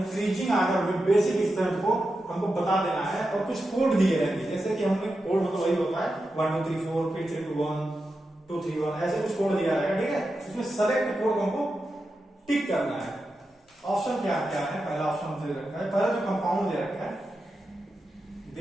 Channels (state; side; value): normal; both; correlation 0.90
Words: आर्डर में बेसिक स्ट्रेंथ को हमको बता देना है और कुछ कोड दिए रहेंगे। जैसे कि हमने कोड मतलब वही होता है 1 2 3 4 फिर 3 2 1 2 3 1 ऐसे कुछ कोड दिया रहेगा, ठीक है। उसमें सेलेक्ट कोड को हमको टिक करना है। ऑप्शन क्या क्या है, पहला ऑप्शन दे रखा है, पहला जो कंपाउंड दे रखा है